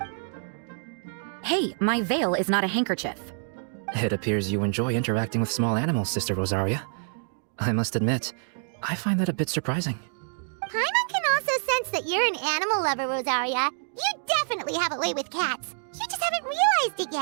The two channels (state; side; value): silent; left; digital silence